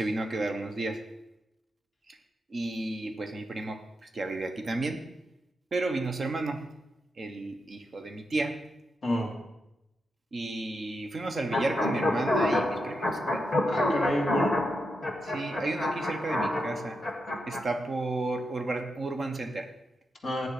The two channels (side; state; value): both; normal; correlation 0.85